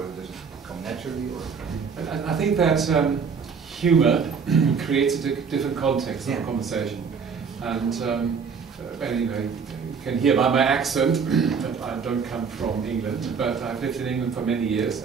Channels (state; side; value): quieter; left; 5.9 dB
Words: does it come naturally? Or? I think that humor creates a different context of a conversation. And you can hear by my accent that I don't come from England, but I've lived in England for many years,